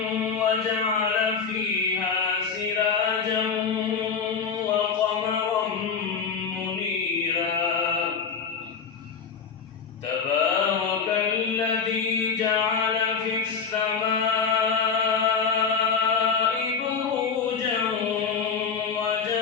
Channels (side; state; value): right; quieter; 6.0 dB